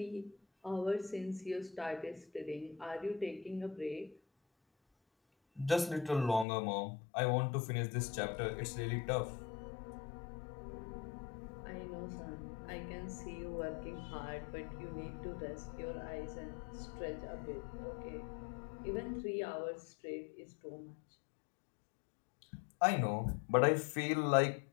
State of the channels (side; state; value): right; drops out; at 6.5 s